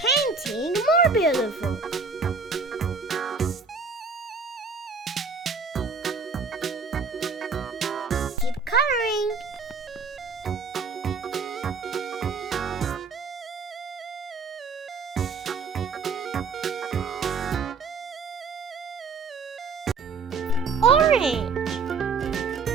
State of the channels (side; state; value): left; quieter; 4.6 dB